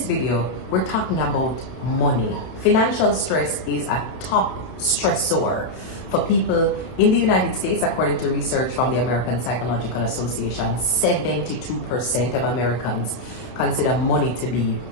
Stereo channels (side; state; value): right; late; 31 ms